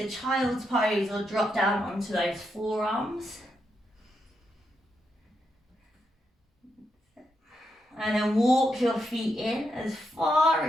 child's pose or drop down onto those forearms. And then walk your feet in as far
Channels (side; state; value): both; normal; correlation 0.82